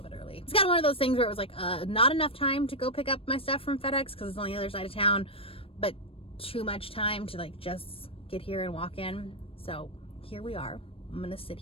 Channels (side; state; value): right; late; 0.27 ms